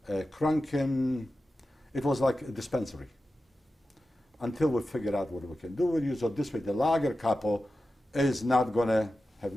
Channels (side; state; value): both; normal; correlation 0.93